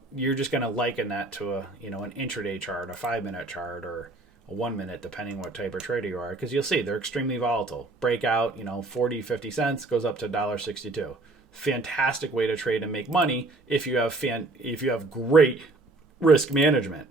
just going to liken that to an intraday chart, a 5-minute chart, or a 1 minute, depending what type of trader you are, because you'll see they're extremely volatile. Breakout, 40, 50 cents goes up to $1.62. Fantastic way to trade and make money if you have great risk management.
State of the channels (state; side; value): quieter; left; 3.1 dB